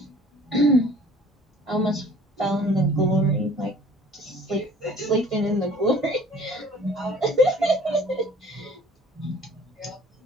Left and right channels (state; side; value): normal; both; correlation 0.52